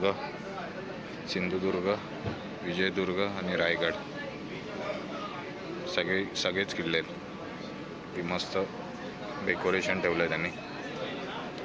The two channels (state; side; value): identical; both; correlation 1.00